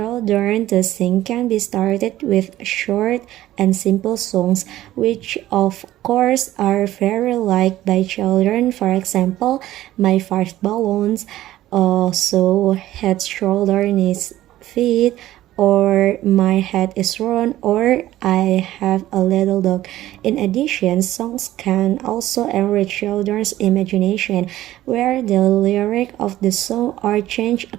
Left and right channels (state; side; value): quieter; left; 14.5 dB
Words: to sing can be started with short and simple songs, which of course are very liked by children. For example, My Five Balloons, so head, shoulder, knees, feet, or My Head is Round, or I Have a Little Dog. In addition, songs can also enrich children's imagination, where the lyric of the song are changed